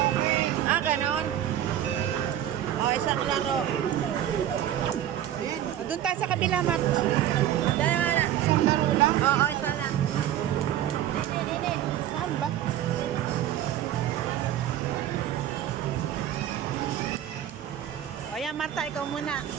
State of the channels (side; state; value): left; quieter; 11.6 dB